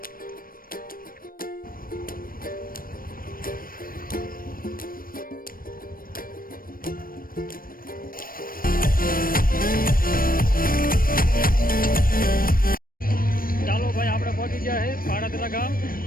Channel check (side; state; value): right; late; 0.41 ms